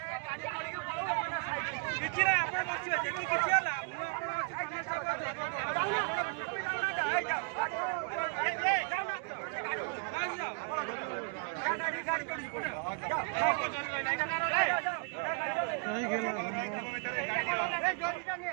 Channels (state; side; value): quieter; left; 38.0 dB